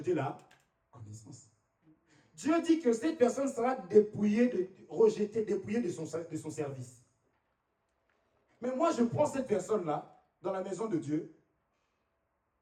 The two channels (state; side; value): identical; both; correlation 1.00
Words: la connaissance. Dieu dit que cette personne sera dépouillée, rejetée, dépouillée de son service. Mais moi, je prends cette personne-là, dans la maison de Dieu,